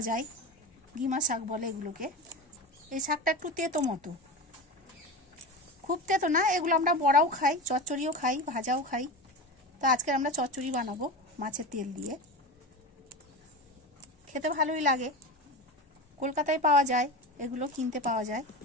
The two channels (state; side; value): normal; both; correlation 0.25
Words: যায়, গিমা শাক বলে এগুলোকে। এই শাকটা একটু তেতো মতো, খুব তেতো না। এগুলো আমরা বড়াও খাই, চচ্চড়িও খাই, ভাজাও খাই। তো আজকে আমরা চচ্চড়ি বানাবো মাছের তেল দিয়ে, খেতে ভালোই লাগে। কলকাতায় পাওয়া যায়, এগুলো কিনতে পাওয়া যায়।